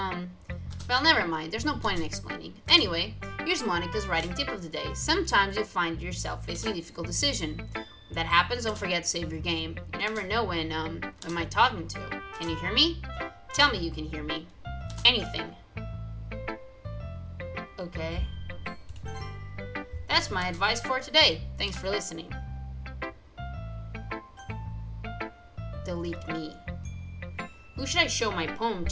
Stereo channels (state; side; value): identical; both; correlation 1.00